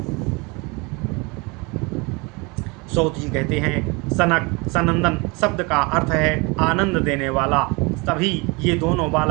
सौत जी कहते हैं, सनक, सनंदन शब्द का अर्थ है आनंद देने वाला। तभी ये दोनों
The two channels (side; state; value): left; quieter; 27.9 dB